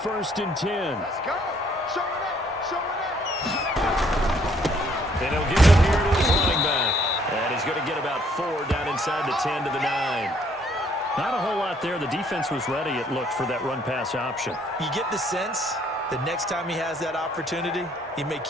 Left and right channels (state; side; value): normal; both; correlation 0.65